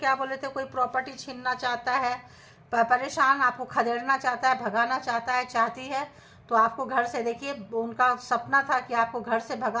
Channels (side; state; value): both; identical; correlation 1.00